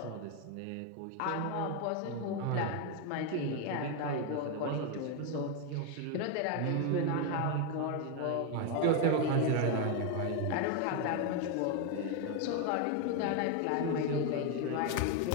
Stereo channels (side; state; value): both; different; correlation 0.01